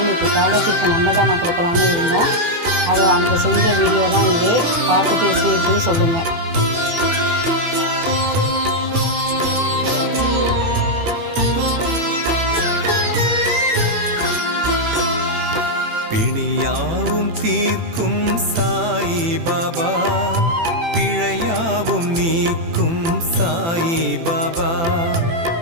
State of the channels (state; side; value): late; left; 18 ms